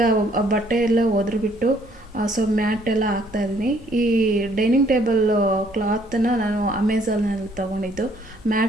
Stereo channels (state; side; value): normal; both; correlation 0.64